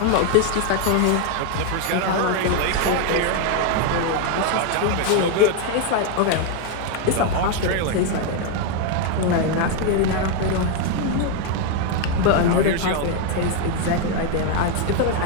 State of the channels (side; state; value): both; different; correlation 0.01